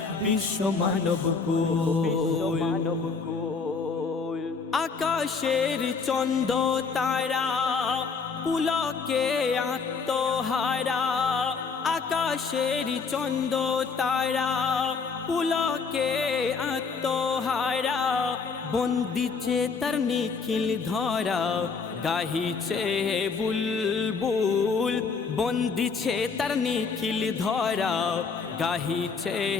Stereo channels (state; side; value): quieter; right; 5.1 dB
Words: বিশ্ব মানব কুল। আকাশের চন্দ্র তারা পুলকে আত্মহারা, আকাশের চন্দ্র তারা পুলকে আত্মহারা, বন্দিছে তার নিখিল ধরা গাহিছে বুলবুল, বন্দিছে তার নিখিল ধরা গাহিছে